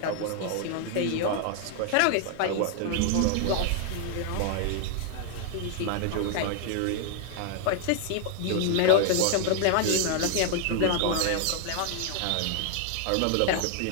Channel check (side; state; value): both; different; correlation 0.00